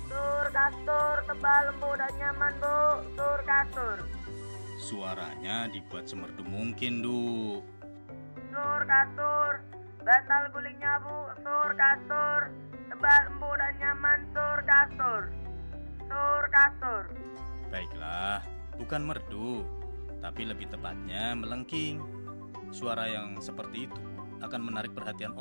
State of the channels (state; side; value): inverted; both; correlation -1.00